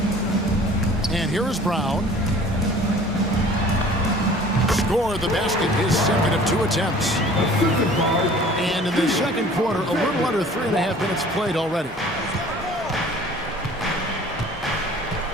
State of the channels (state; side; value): normal; both; correlation 0.48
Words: And here is Brown. Score the basket, his second of 2 attempts. And in the second quarter, a little under 3.5 minutes played already.